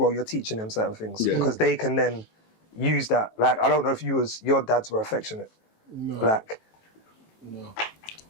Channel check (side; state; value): right; late; 18 ms